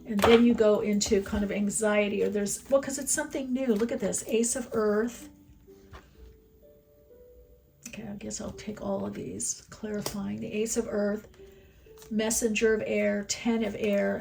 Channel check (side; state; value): both; identical; correlation 1.00